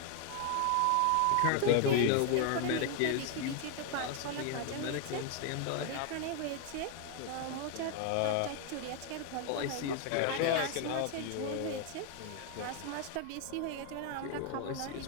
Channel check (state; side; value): different; both; correlation 0.00